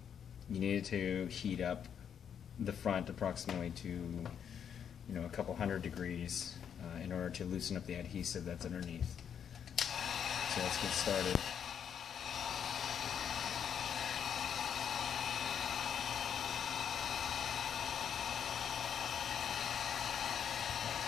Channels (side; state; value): right; quieter; 8.2 dB